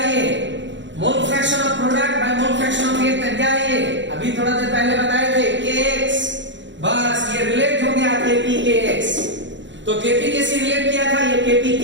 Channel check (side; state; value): left; late; 0.54 ms